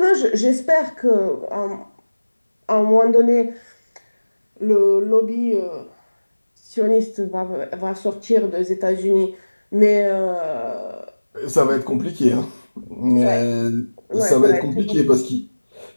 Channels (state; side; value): inverted; both; correlation -1.00